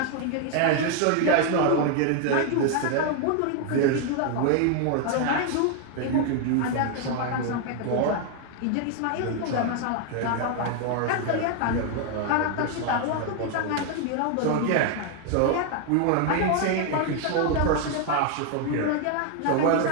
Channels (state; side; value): different; both; correlation 0.00